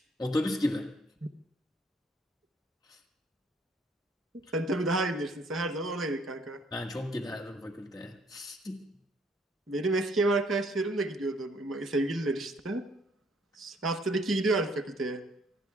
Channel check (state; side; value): normal; both; correlation 0.64